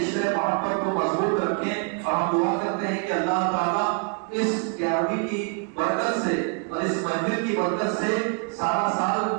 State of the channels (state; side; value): quieter; left; 37.6 dB